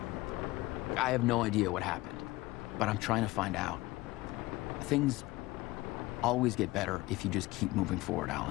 I have no idea what happened, but I'm trying to find out. Things always get better if you just keep moving forward,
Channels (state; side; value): quieter; right; 19.9 dB